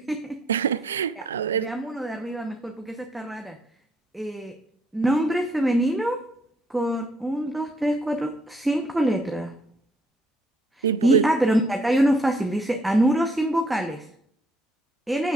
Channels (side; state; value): both; normal; correlation 0.68